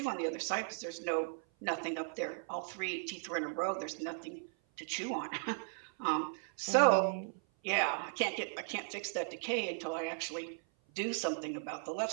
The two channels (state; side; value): silent; left; 53 dB below the other